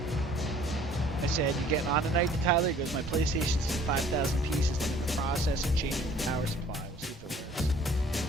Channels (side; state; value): both; normal; correlation 0.54